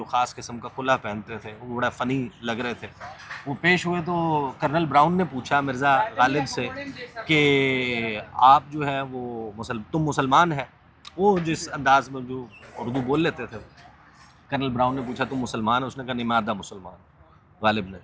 خاص قسم کا کلہ پہنتے تھے, وہ بڑا فنی لگ رہے تھے, وہ پیش ہوئے تو کرنل براؤن نے پوچھا مرزا غالب سے کہ آپ جو ہے وہ تم مسلمان ہے, وہ جس انداز میں جو اردو بول لیتے تھے. کرنل براؤن نے پوچھا تم مسلمان ہے؟ اس نے کہا نہیں میں آدھا مسلمان. غالب نے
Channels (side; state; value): both; identical; correlation 1.00